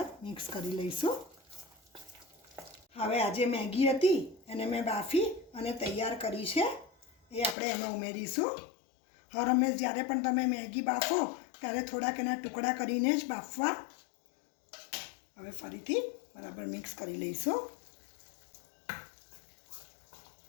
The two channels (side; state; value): right; drops out; at 7.6 s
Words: મિક્સ કરી લઈશું। હવે આ જે મેગી હતી એને મેં બાફી અને તૈયાર કરી છે એ આપણે એમાં ઉમેરીશું। હર હંમેશ જ્યારે પણ તમે મેગી બાફો ત્યારે થોડાક એના ટુકડા કરીને જ બાફવા। હવે ફરીથી બરાબર મિક્સ કરી લઈશું।